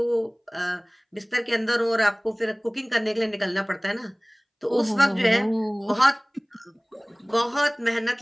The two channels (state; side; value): identical; both; correlation 1.00